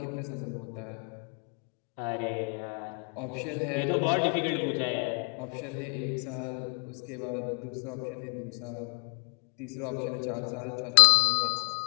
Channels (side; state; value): right; quieter; 38.4 dB